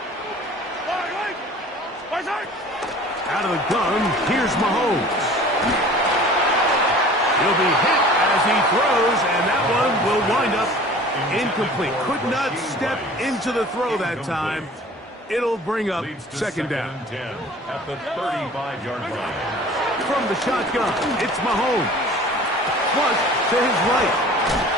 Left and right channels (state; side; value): normal; both; correlation 0.45